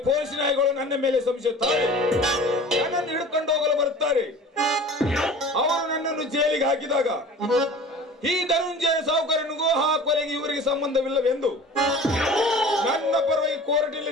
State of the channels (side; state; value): both; normal; correlation 0.41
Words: ಪೊಲೀಸ್ ನಾಯಿಗಳು ನನ್ನ ಮೇಲೆ ಸಂಶಯಿಸುತ್ತಾರೆ. ನನ್ನನ್ನು ಹಿಡ್ಕೊಂಡು ಹೋಗಲು ಬರುತ್ತಾರೆ. ಅವರು ನನ್ನನ್ನು ಜೈಲಿಗೆ ಹಾಕಿದಾಗ ಈ ಧನುಂಜಯ ಸಾಹುಕಾರನಿಗೂ ಆ ಕೊಲೆಗೆ ಇವರಿಗೆ ಸಂಬಂಧವಿಲ್ಲವೆಂದು ನನ್ನ ಪರವಾಗಿ